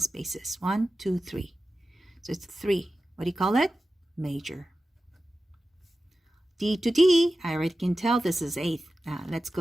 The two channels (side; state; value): both; normal; correlation 0.94